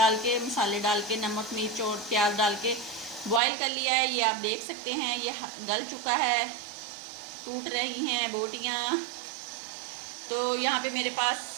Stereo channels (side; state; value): left; drops out; at 3.4 s